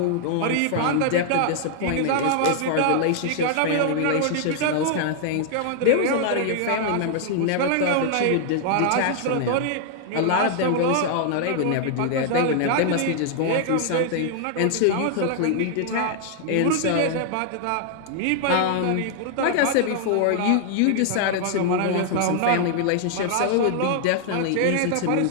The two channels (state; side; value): different; both; correlation 0.00